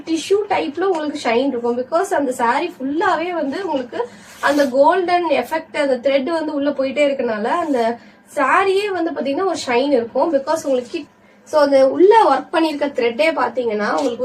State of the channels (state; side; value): identical; both; correlation 1.00